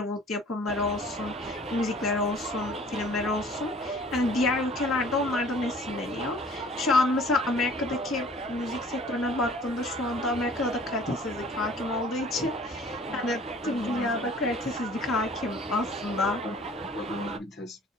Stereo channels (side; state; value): both; normal; correlation 0.51